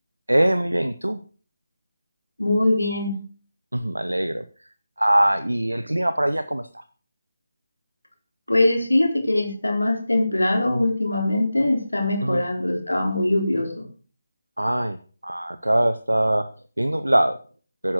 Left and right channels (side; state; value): both; inverted; correlation -0.95